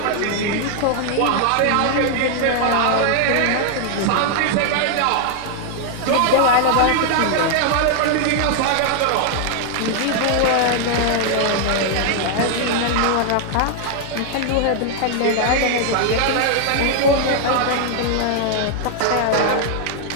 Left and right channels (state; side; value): different; both; correlation 0.00